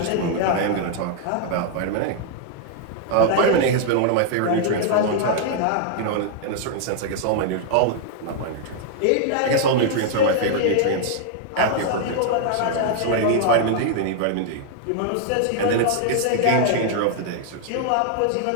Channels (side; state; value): both; different; correlation 0.00